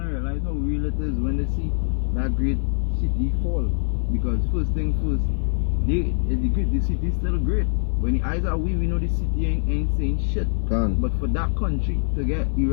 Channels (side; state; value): right; silent; digital silence